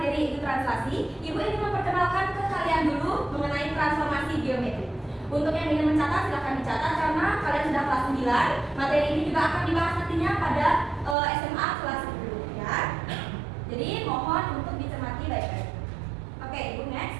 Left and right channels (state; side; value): drops out; left; at 11.2 s